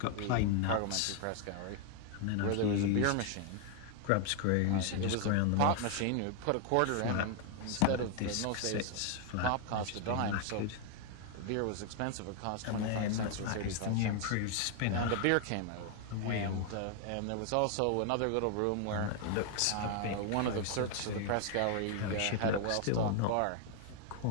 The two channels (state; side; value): different; both; correlation 0.00